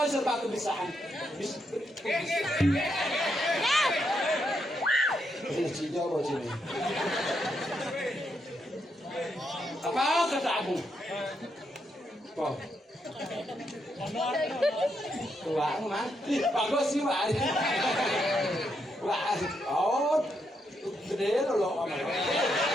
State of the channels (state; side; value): normal; both; correlation 0.80